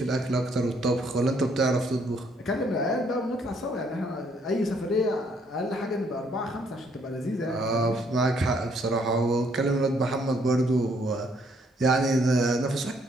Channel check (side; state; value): both; normal; correlation 0.68